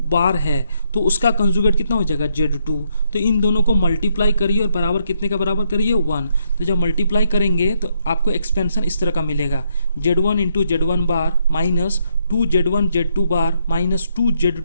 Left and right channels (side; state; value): both; inverted; correlation -0.75